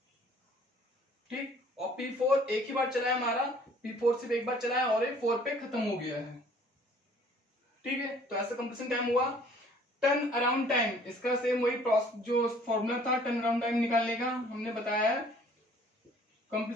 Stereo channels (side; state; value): both; normal; correlation 0.55